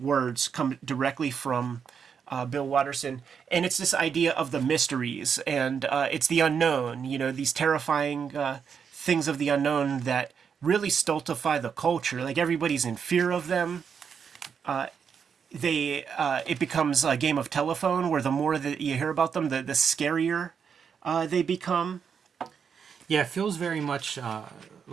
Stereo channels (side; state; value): left; quieter; 6.8 dB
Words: come directly from Bill Watterson. And it's this idea of the mysteries. And it's the unknown, you know, these terrifying things of the unknown that really stultify the culture. Like everybody's in fear of them. It becomes a game of telephone where the more that you hear about them, the scarier they become. Yeah, it feels very much